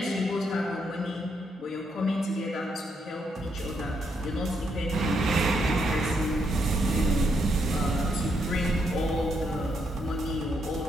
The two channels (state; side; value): normal; both; correlation 0.77